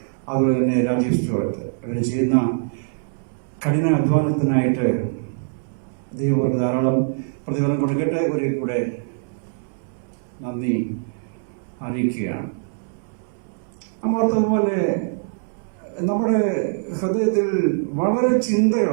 അതുപോലെ തന്നെ രാജീവ് സ്റ്റുവർട്ട്, ഇവർ ചെയ്യുന്ന കഠിന അധ്വാനത്തിനായിട്ട് ദൈവം അവർക്ക് ധാരാളം പ്രതിഫലം കൊടുക്കട്ടെ. ഒരു കൂടെ നന്ദി അറിയിക്കുകയാണ്. അമോർത്തതുപോലെ നമ്മുടെ ഹൃദയത്തിൽ വളരെ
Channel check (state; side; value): silent; left; 64 dB below the other